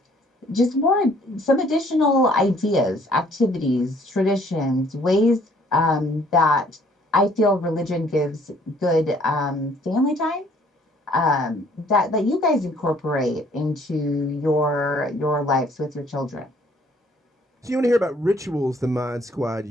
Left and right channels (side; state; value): both; normal; correlation 0.60